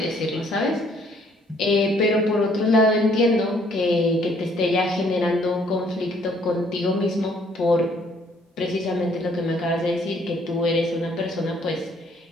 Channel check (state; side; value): normal; both; correlation 0.64